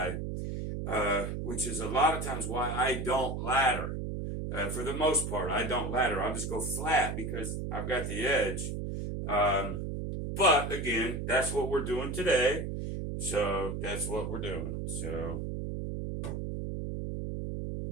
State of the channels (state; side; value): noise; right; hum, 4 dB below the sound